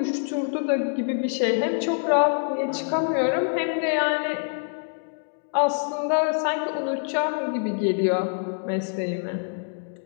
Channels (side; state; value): right; silent; digital silence